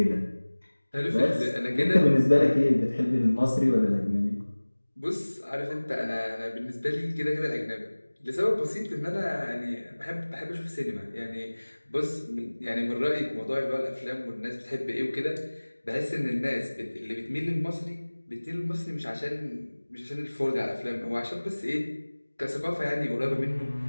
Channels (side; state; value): both; inverted; correlation -1.00